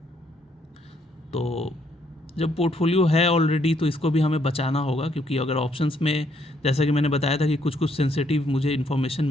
तो जब पोर्टफोलियो है ऑलरेडी तो इसको भी हमें बचाना होगा, क्योंकि अगर ऑप्शंस में, जैसा कि मैंने बताया था कि कुछ सेंसिटिव मुझे इन्फॉर्मेशन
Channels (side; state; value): both; normal; correlation 0.71